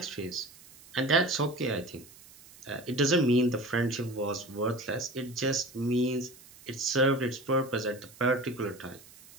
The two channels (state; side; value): noise; right; hiss, 22 dB below the sound